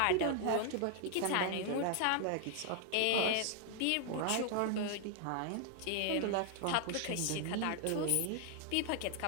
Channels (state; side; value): different; both; correlation 0.00